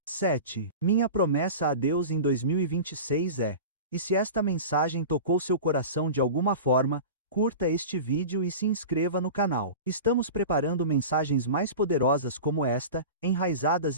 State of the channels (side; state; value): both; inverted; correlation -0.32